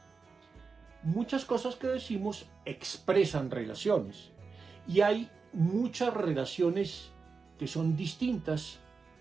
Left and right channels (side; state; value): left; quieter; 4.8 dB